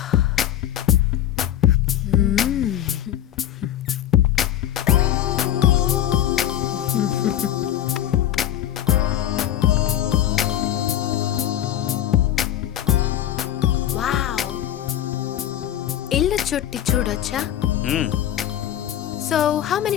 Wow! ఇల్లు చుట్టి చూడొచ్చా? హ్మ్, So, how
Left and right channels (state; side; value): quieter; right; 11.4 dB